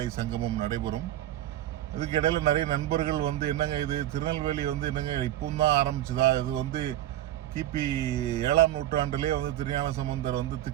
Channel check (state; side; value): quieter; left; 13.4 dB